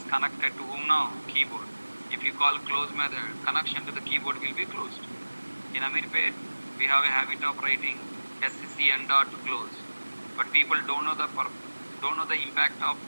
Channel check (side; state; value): both; inverted; correlation -1.00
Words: connected to whom now? Keyboard. If you call close method, connection to the keyboard will be closed. In Amirpet, we have a habit of writing SCN dot close. But people don't know the impact of